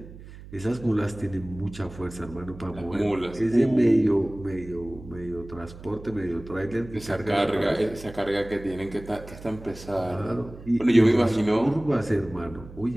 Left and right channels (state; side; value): noise; right; hum, 16 dB below the sound